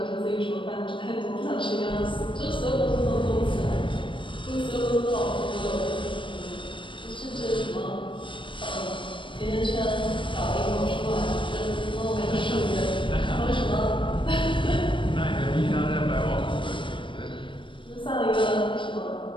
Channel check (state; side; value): late; right; 0.24 ms